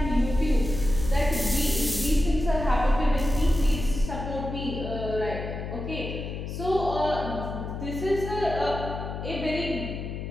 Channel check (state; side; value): noise; left; hum, 6 dB below the sound